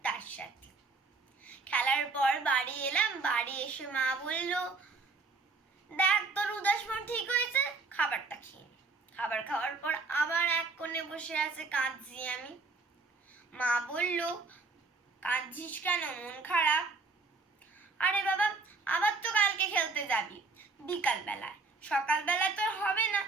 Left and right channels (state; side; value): quieter; left; 4.0 dB